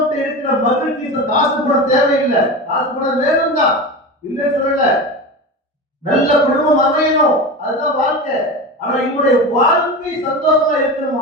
இருக்கிற மகிழ்ச்சி காசு பணம் தேவையில்லை, காசு பணம் வேணும் தான், இல்லைன்னு சொல்லல, நல்ல குடும்பம் அமையணும், அதுதான் வாழ்க்கை. ஆனா இவனுடைய வாழ்க்கை சந்தோஷமா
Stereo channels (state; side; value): normal; both; correlation 0.26